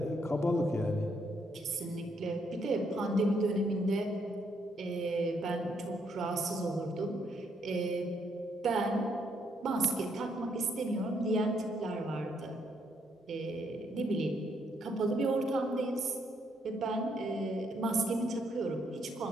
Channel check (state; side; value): normal; both; correlation 0.73